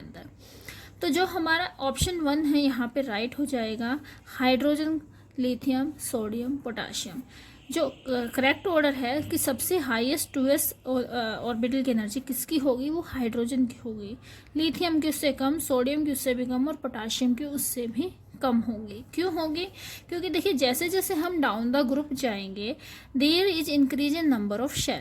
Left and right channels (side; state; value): both; identical; correlation 1.00